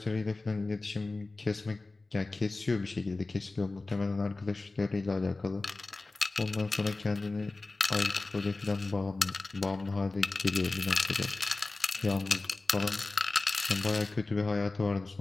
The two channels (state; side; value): quieter; right; 3.3 dB